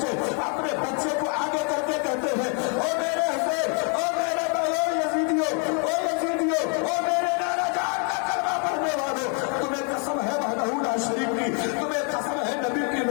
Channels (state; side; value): quieter; right; 39.0 dB